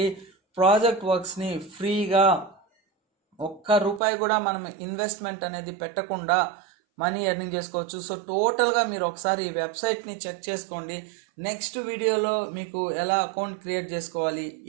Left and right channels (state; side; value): drops out; left; at 4.0 s